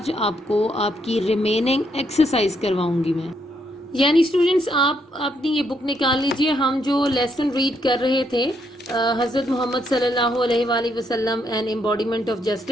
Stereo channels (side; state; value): both; normal; correlation 0.75